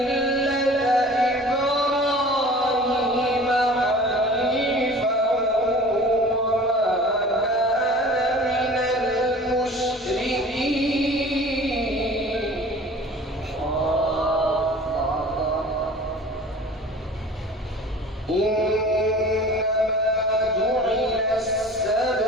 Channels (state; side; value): normal; both; correlation 0.44